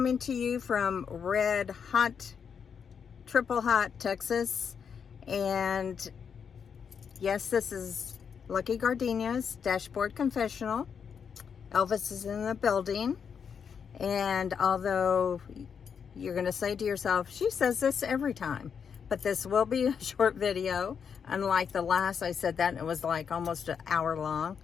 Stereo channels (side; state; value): right; quieter; 6.9 dB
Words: to you from red hot, triple hot Texas. And yes, this is Lucky Gardenia's Dashboard Confessional. Elvis is in the building. And although you're going to say to yourself, she says this every time, but this will be a short video. Unlike the last, I said that and it was like almost an hour long.